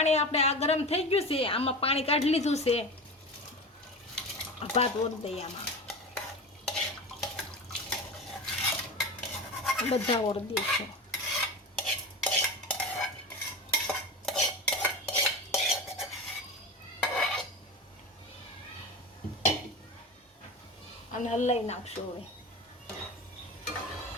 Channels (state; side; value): normal; both; correlation 0.27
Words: આપણે આ ગરમ થઈ ગયું છે, આમાં પાણી કાઢી લીધું છે, ભાત ઓરી દઈએ આમાં, બધા ઓરી દઈશું। અને હલાઈ નાખશું। હવે